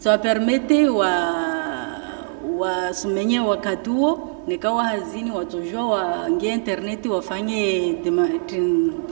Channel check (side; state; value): left; silent; digital silence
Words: permete wa sumenye wakati huo nikawa hazini watojua waingie internet wafanye